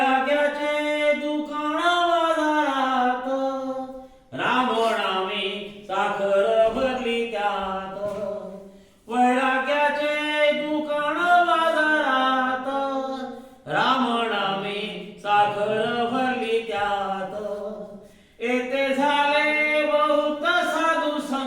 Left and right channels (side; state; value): both; identical; correlation 1.00